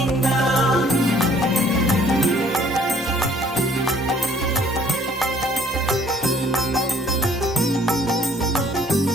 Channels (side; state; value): both; normal; correlation 0.59